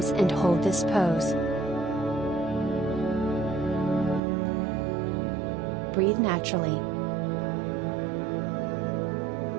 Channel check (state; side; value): drops out; left; at 4.2 s